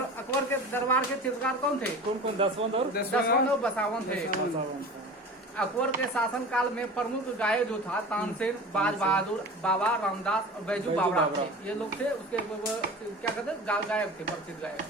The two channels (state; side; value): normal; both; correlation 0.36